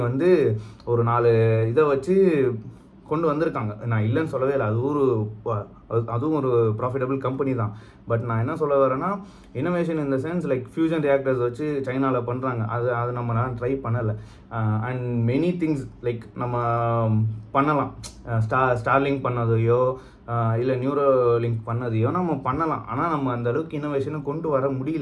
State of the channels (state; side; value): identical; both; correlation 1.00